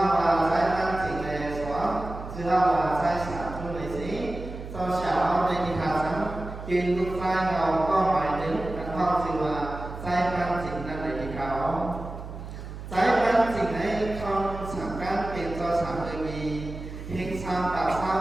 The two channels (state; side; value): noise; right; hum, 10 dB below the sound